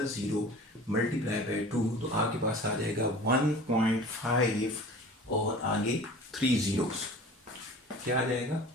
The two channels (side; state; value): both; normal; correlation 0.42